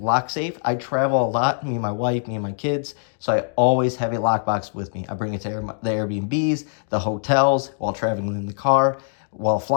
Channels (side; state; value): right; silent; digital silence